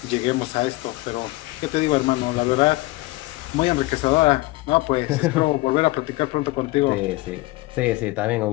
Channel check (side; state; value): right; quieter; 21.1 dB